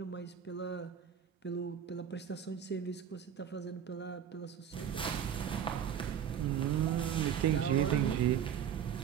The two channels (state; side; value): quieter; left; 8.7 dB